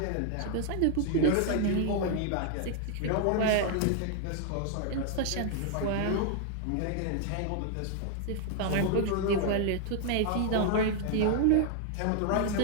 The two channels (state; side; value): different; both; correlation 0.00